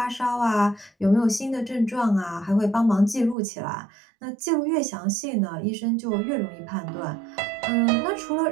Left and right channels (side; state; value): left; drops out; at 3.4 s